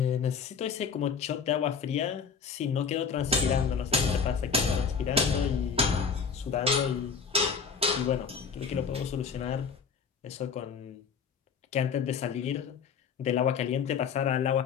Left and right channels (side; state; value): right; quieter; 6.0 dB